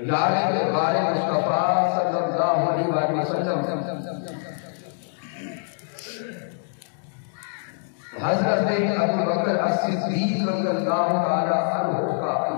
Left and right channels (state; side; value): silent; right; digital silence